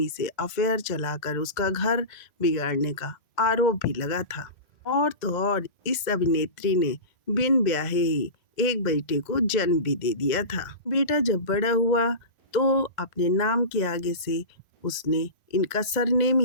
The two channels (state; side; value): late; right; 2.0 ms